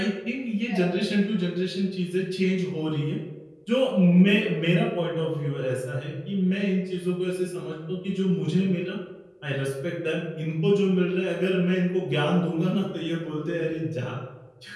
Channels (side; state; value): both; identical; correlation 1.00